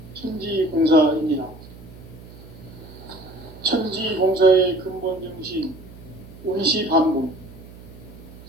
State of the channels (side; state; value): right; noise; hum, 18 dB below the sound